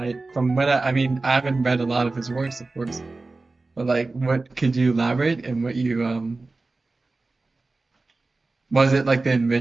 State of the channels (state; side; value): quieter; left; 3.5 dB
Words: mean, I haven't read a lot of his works, of course, but like, what could you elaborate and what you was it like the